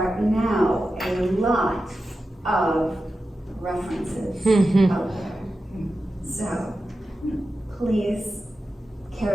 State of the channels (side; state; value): both; normal; correlation 0.92